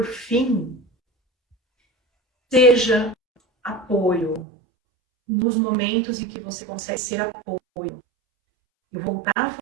fim, seja apoio nos momentos em que você consegue ser apoio. Eu vou voltar a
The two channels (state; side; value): drops out; left; at 4.5 s